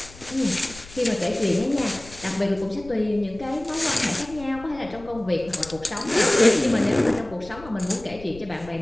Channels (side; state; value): left; noise; rumble, 18 dB below the sound